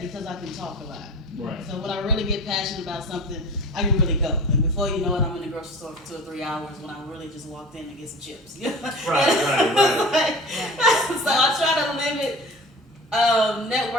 because I can talk a lot. Right. So when I really get passionate about something, I can really go. And before you know it, I'm in the grocery store for 2 or 3 hours when I really just walked in to get some chips. Right. So I try to limit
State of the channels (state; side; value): normal; both; correlation 0.38